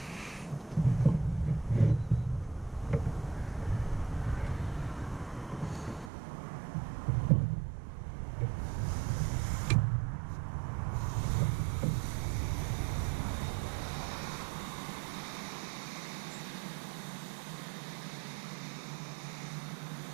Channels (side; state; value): left; drops out; at 6.1 s